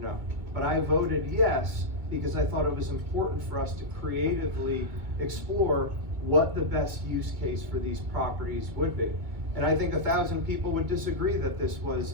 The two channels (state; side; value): late; left; 2.3 ms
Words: no. But I voted yes because I thought it was important for us to creatively explore what the best use case for these properties would be. And I think 1,000 people would disagree that this